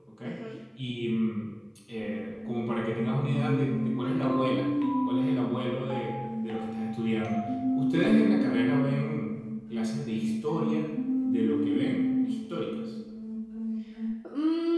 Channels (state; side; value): identical; both; correlation 1.00